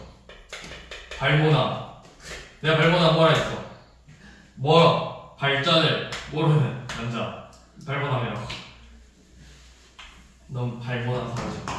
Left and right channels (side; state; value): both; identical; correlation 1.00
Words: 발모나. 내가 발모나 뭐라 했어? 발전을 모르는 남자. 발모나이라고. 넌 발모나 사오정.